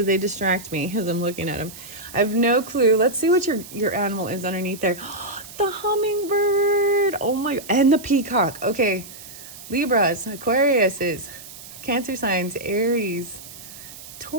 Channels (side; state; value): right; noise; hiss, 15 dB below the sound